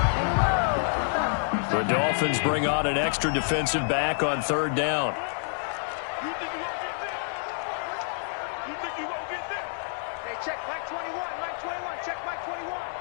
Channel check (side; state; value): right; silent; digital silence